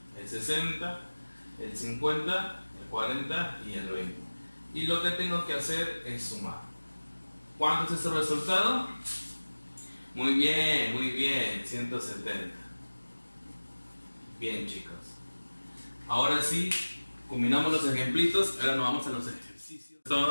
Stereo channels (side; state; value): both; inverted; correlation -1.00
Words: El 60, el 50, el 40 y el 20. Y lo que tengo que hacer es sumar. ¿Cuánto es ese resultado? Muy bien, 170. Bien chicos. Ahora sí, combinamos los ejemplitos, ahora nos vamos a los ejercicios.